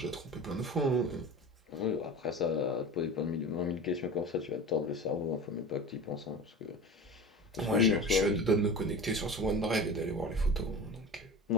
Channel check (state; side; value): normal; both; correlation 0.33